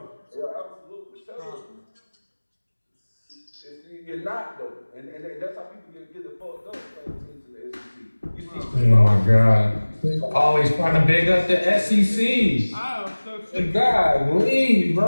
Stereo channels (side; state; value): both; inverted; correlation -1.00